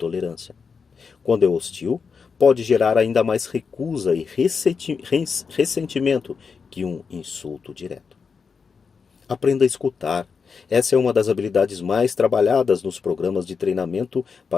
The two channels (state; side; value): quieter; right; 5.5 dB